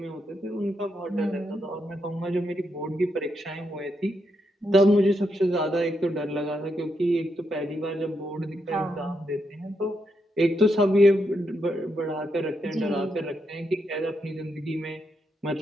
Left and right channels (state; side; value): normal; both; correlation 0.81